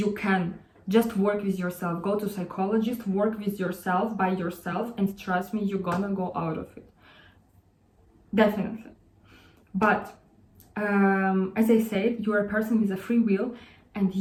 can. Just work with yourself, go to psychologist, work with yourself, by yourself, and trust me, you're gonna go out of it. Definitely. But as I said, you're a person with a free will, and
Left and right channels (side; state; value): both; identical; correlation 1.00